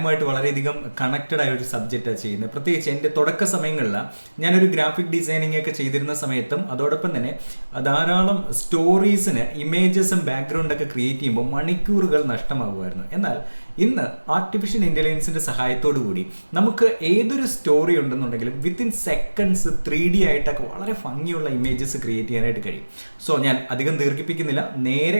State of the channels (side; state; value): both; inverted; correlation -1.00